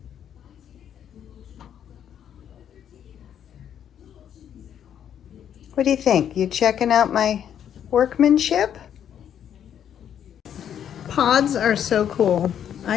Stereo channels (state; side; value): quieter; right; 9.3 dB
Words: What do you think? You checking out my workmanship? Pods are so cool.